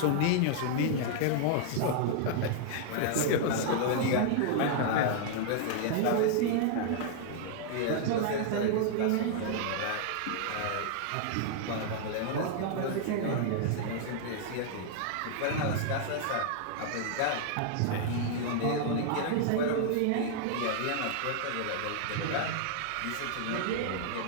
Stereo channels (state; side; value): different; both; correlation -0.01